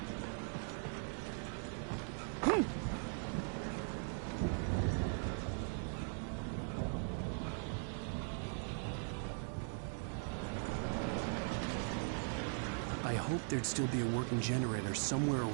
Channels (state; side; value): silent; left; 51 dB below the other